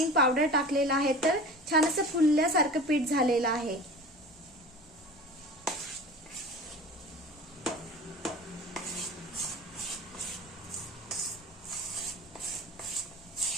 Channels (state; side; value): normal; both; correlation 0.37